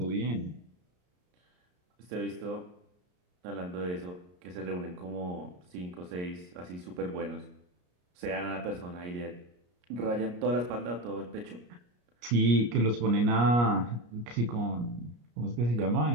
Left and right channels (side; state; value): left; late; 33 ms